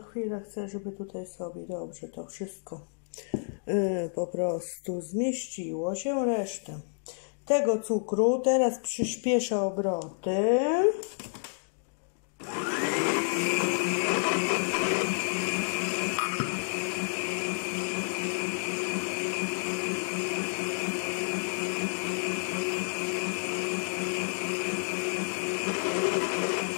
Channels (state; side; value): silent; right; digital silence